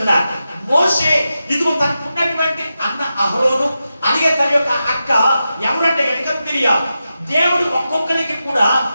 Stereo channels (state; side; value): inverted; both; correlation -0.90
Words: మోషే ఇదిగో తనకు ఉన్నటువంటి అన్న అహరోను, అలాగే తన యొక్క అక్క ఎవరంటే కనుక మిరియాము. దేవుడు ఒక్కొక్కరికి కూడా